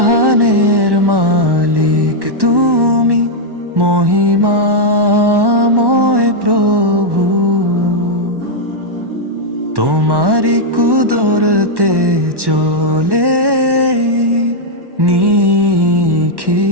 মালিক তুমি, মহিমাময় প্রভু। তোমারি কুদরতে চলে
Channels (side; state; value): left; late; 1.1 ms